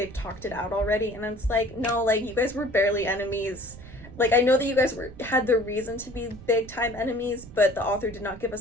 talked it out already, and it's like, no, like you guys were barely enemies. Like, I know that you guys had the reason to be big time enemies, but the author did not give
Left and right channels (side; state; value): right; noise; rumble, 17 dB below the sound